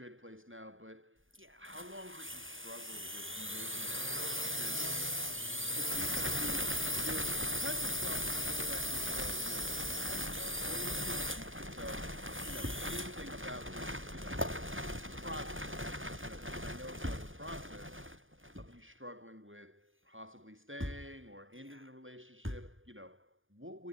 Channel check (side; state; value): left; late; 0.58 ms